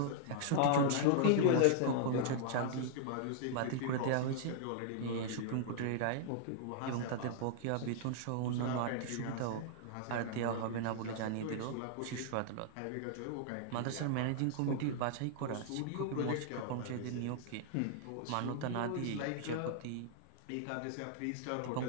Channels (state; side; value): different; both; correlation -0.01